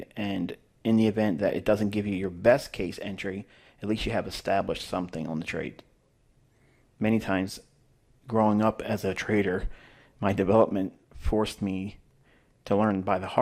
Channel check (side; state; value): both; identical; correlation 1.00